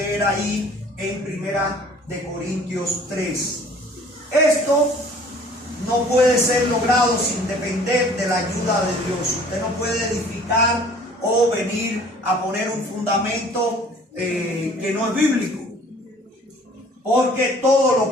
ahí en 1 Corintios 3. Esto no puede ser logrado sin depender de la ayuda de Dios. Usted no puede edificar o venir a poner un fundamento que no es bíblico. Porque todo lo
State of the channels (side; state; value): both; normal; correlation 0.52